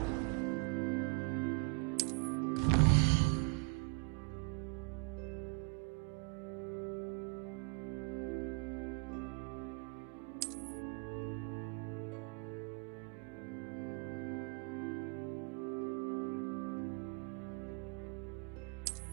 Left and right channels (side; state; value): left; quieter; 31.2 dB